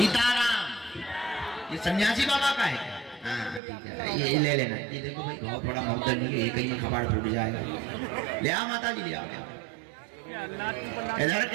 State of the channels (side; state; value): left; drops out; at 3.6 s